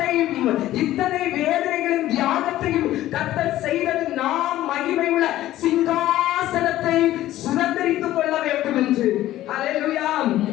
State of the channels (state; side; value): quieter; right; 14.4 dB